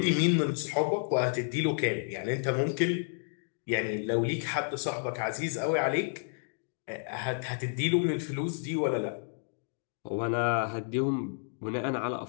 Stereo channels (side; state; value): right; silent; digital silence